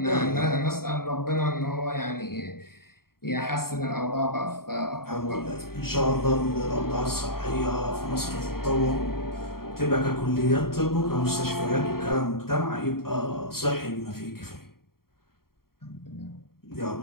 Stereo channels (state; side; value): late; right; 0.93 ms